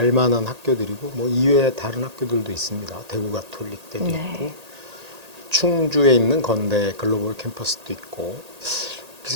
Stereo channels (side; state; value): left; late; 1.8 ms